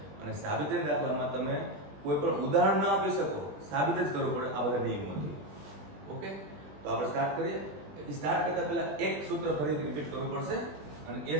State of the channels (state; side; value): late; left; 20 ms